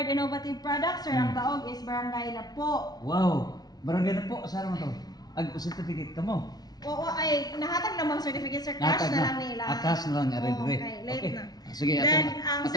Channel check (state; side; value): late; right; 0.19 ms